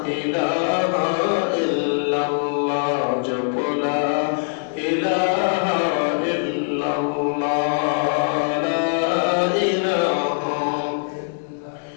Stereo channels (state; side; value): silent; right; digital silence